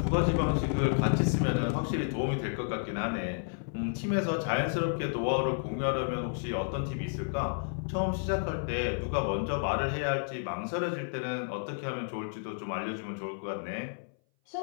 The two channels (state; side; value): silent; right; 57 dB below the other